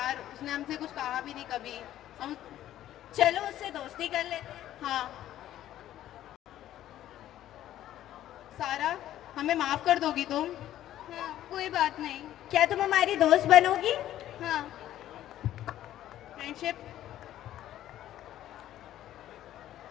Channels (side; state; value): right; quieter; 12.7 dB